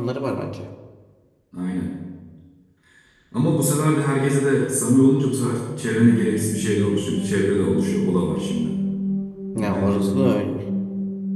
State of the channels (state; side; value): identical; both; correlation 1.00